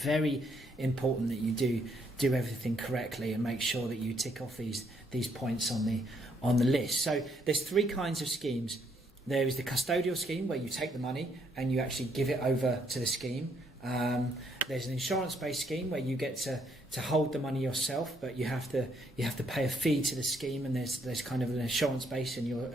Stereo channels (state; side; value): normal; both; correlation 0.71